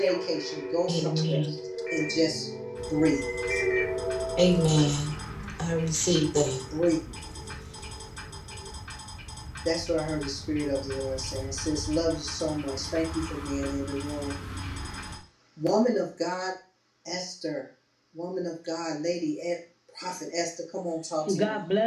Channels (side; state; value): both; identical; correlation 1.00